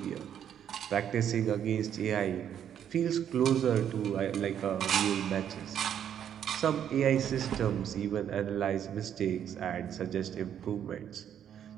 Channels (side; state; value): left; quieter; 9.4 dB